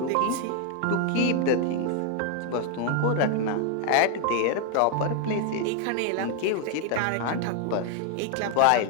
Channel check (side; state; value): both; different; correlation 0.00